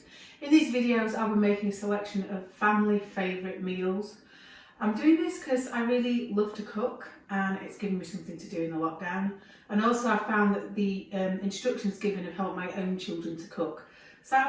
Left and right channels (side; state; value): both; identical; correlation 1.00